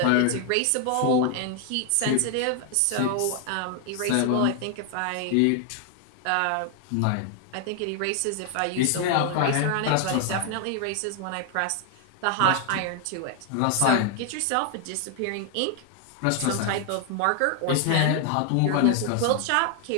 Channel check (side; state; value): both; different; correlation 0.00